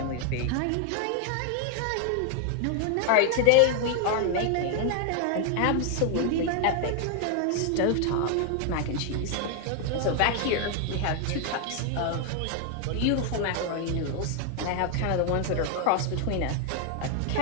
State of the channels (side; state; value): both; different; correlation 0.00